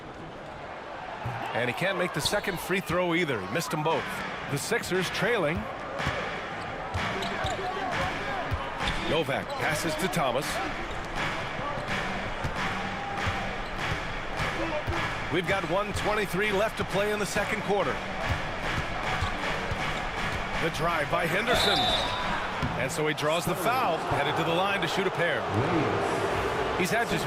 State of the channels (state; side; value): identical; both; correlation 1.00